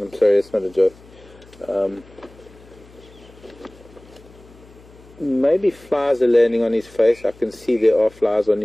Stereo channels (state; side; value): noise; left; hum, 24 dB below the sound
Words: sorry, it's not a joke. Maybe flies are landing on his face. I can see there are flies on